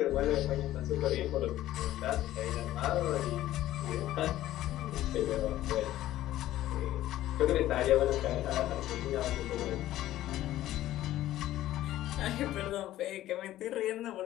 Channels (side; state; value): right; quieter; 14.2 dB